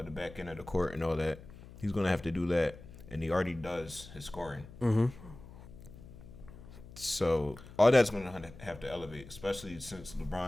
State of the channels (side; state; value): left; noise; hum, 17 dB below the sound